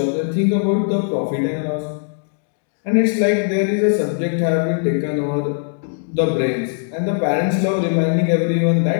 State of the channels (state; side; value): silent; right; digital silence